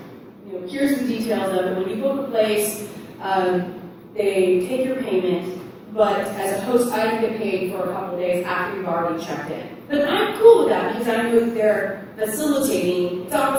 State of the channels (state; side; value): identical; both; correlation 1.00